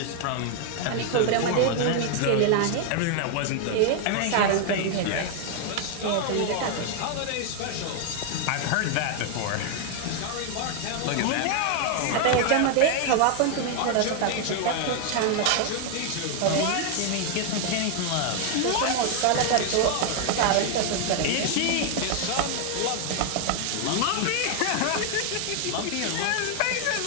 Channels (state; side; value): different; both; correlation 0.00